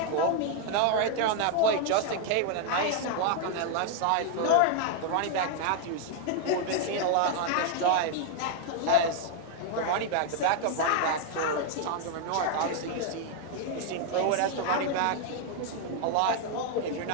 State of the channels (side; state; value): both; different; correlation 0.00